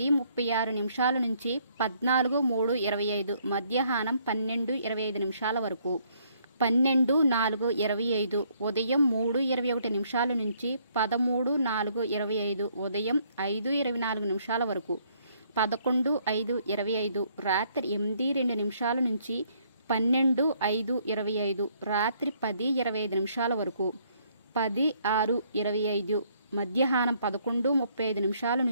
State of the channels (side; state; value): both; inverted; correlation -0.67